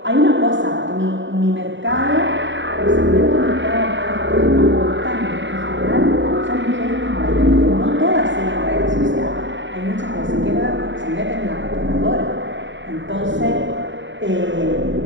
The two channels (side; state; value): left; late; 0.54 ms